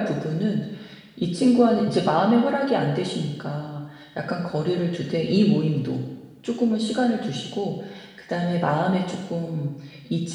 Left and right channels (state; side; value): identical; both; correlation 1.00